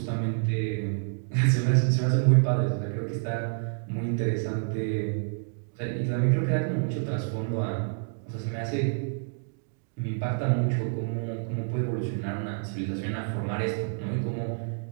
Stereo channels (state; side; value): silent; left; digital silence